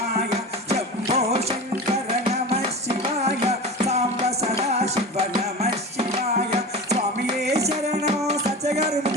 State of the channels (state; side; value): normal; both; correlation 0.30